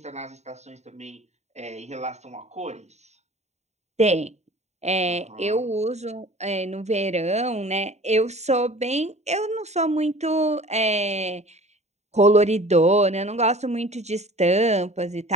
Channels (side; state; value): left; late; 0.32 ms